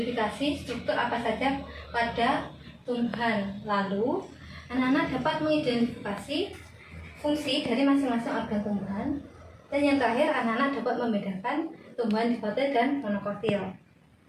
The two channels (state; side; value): identical; both; correlation 1.00